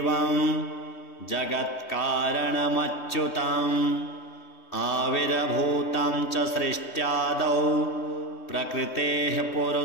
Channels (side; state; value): right; late; 3.2 ms